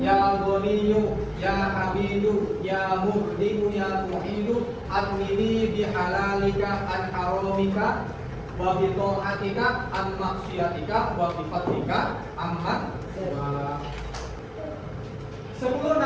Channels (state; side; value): identical; both; correlation 1.00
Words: ya Ghaniyyu ya Hamidu ya Muhdimu ya Muhidu adnini bihalalika an haramika wa bi ta'atika an maksiatika wa bi fadlika amman. 10